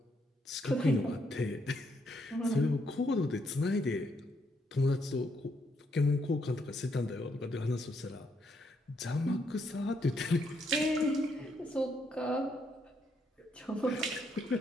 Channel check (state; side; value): normal; both; correlation 0.75